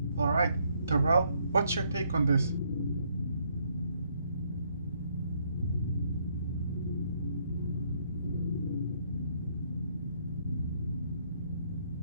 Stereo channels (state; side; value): inverted; both; correlation -0.70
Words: Alright, Terrell, what's your take on this?